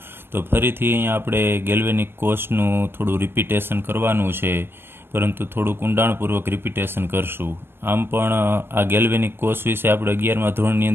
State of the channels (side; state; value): left; late; 0.11 ms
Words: તો ફરીથી અહીંયા આપણે ગેલ્વેનિક કોષનું થોડું રિપીટેશન કરવાનું છે, પરંતુ થોડુંક ઊંડાણપૂર્વક રિપીટેશન કરશું. આમ પણ આ ગેલ્વેનિક કોષ વિશે આપણે 11મા ધોરણની